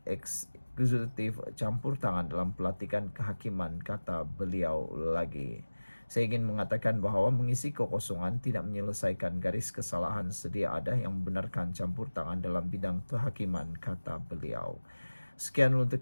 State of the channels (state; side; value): inverted; both; correlation -1.00